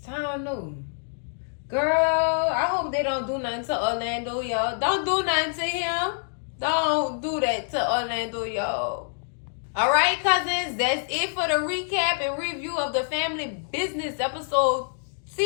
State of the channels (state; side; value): silent; right; digital silence